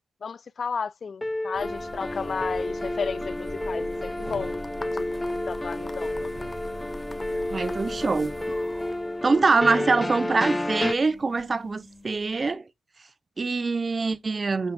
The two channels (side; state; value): both; normal; correlation 0.94